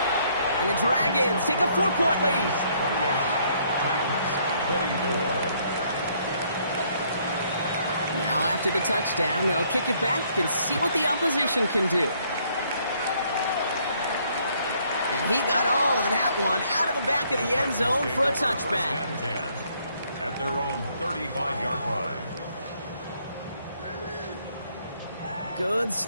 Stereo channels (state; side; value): inverted; both; correlation -0.67